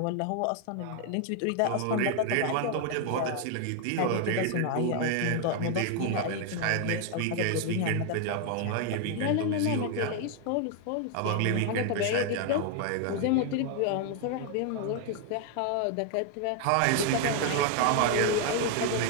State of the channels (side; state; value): both; different; correlation 0.00